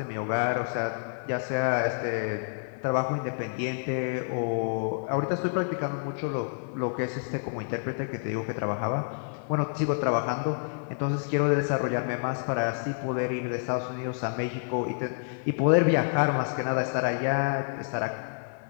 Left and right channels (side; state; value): right; silent; 58 dB below the other